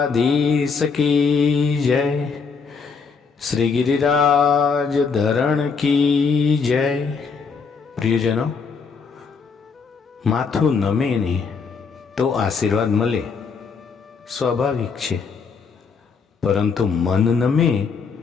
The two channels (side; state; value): right; quieter; 5.3 dB